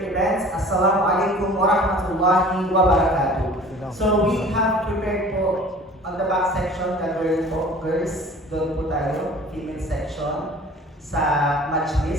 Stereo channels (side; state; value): both; normal; correlation 0.45